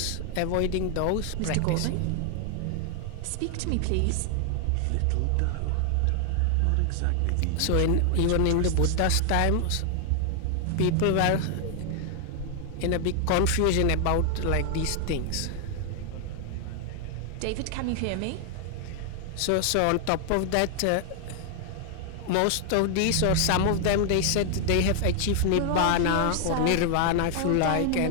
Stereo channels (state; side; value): different; both; correlation 0.00